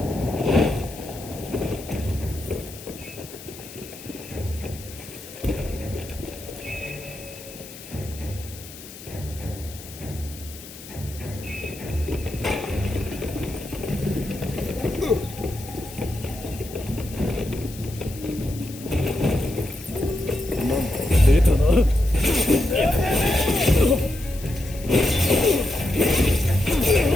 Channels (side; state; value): left; noise; hiss, 16 dB below the sound